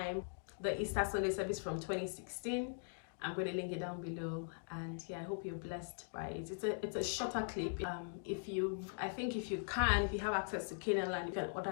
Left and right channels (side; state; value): right; silent; digital silence